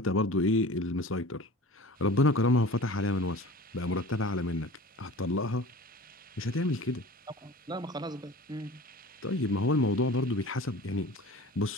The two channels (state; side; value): normal; both; correlation 0.40